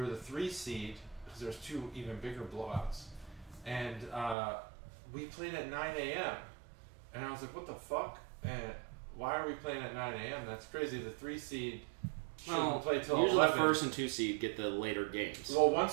the 3 seed because there's 2 even bigger blowouts, and we played at 9 a.m. And I was like, what the fuck? And why are we playing at 9 a.m.? That's crazy. The 3 seed. Play till usually 11. The 1st and 2 seed get the later games. Well, 1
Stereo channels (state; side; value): drops out; left; at 4.4 s